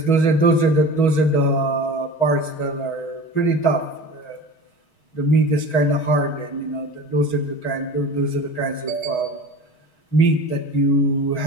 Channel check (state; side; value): late; right; 6.3 ms